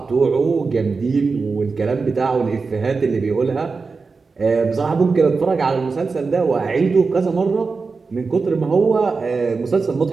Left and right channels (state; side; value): quieter; left; 4.5 dB